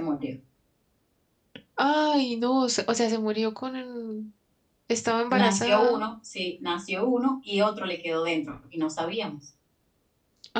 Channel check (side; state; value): both; identical; correlation 1.00